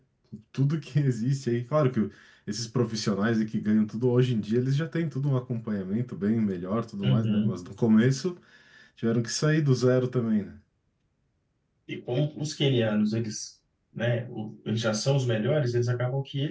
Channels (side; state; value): both; identical; correlation 1.00